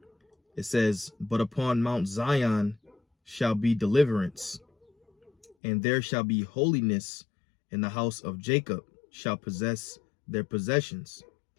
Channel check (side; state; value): right; drops out; at 5.6 s